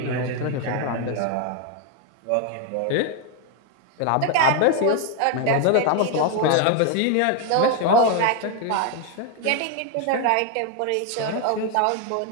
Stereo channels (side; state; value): both; different; correlation 0.01